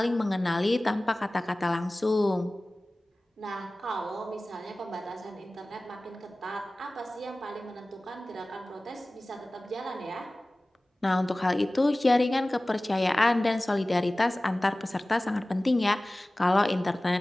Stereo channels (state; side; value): normal; both; correlation 0.98